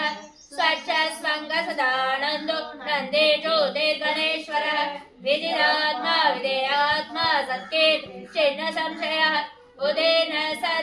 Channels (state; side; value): identical; both; correlation 1.00